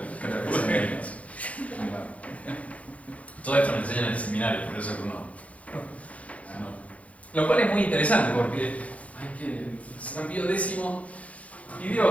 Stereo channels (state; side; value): late; right; 0.066 ms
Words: Todo esto me enseñan en el seminario, por eso que uno. Lo cual es muy interesante porque hay que. San Pío X